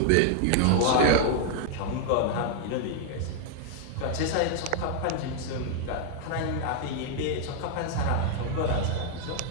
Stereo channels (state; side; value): different; both; correlation 0.00